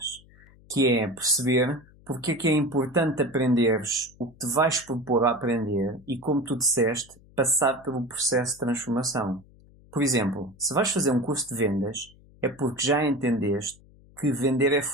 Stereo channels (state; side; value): noise; left; hum, 26 dB below the sound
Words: que é perceber porque é que é importante aprenderes o que te vais propor a aprender e, como tu disseste, passar pelo processo de transformação. Por exemplo, se vais fazer um curso de vendas, é porque já entendeste que vender é